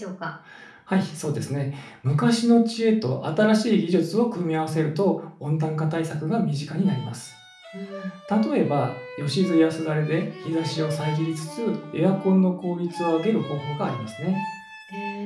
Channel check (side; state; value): both; identical; correlation 1.00